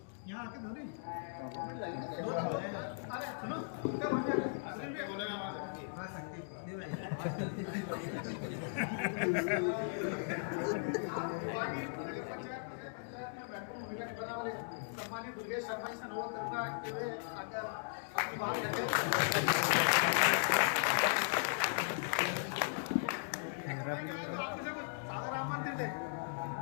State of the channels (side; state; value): right; silent; digital silence